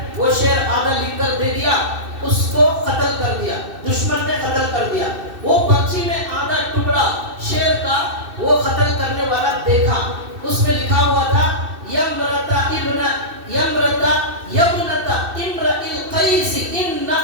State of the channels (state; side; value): late; left; 2.6 ms